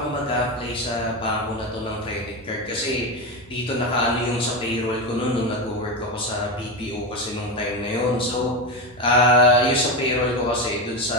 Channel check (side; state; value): both; normal; correlation 0.16